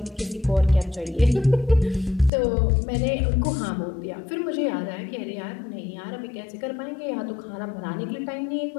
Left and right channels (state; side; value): drops out; right; at 2.3 s